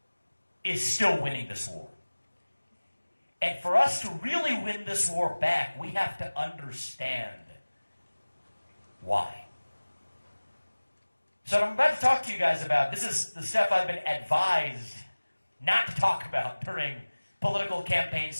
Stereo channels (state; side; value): inverted; both; correlation -1.00